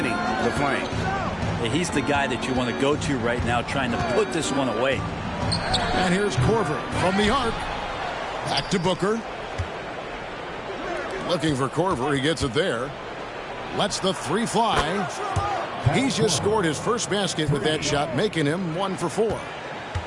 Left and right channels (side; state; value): both; identical; correlation 1.00